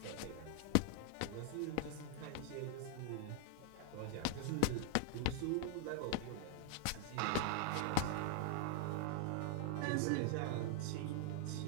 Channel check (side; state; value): both; different; correlation 0.00